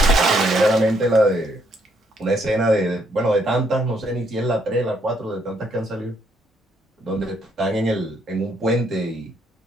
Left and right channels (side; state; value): both; normal; correlation 0.72